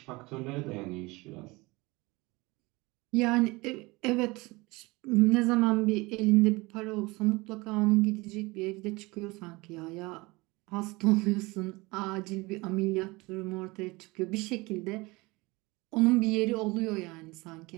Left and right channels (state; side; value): quieter; left; 23.5 dB